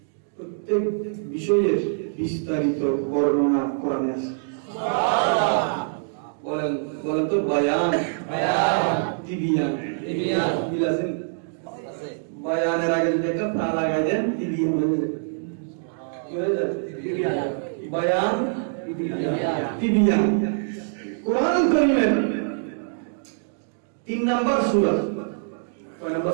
প্রত্যেক বিষয়ের বিস্তারিত বর্ণনা কোরআনে আছে। সুবহানাল্লাহ। বলেন বলেন তো বায়ান তিবিয়ান বিলাসিন বায়ানের আগে যদি একটা তা লাগাই দেন তিবিয়ান হয়ে যাবে কি হয়ে যায় বায়ান তিবিয়ান কোরআন কারীমের 3 নাম্বার সূরা কয় নাম্বার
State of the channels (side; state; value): left; silent; digital silence